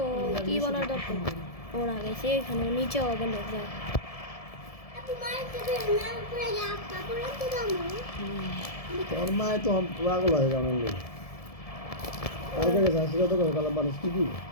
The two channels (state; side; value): late; right; 1.7 ms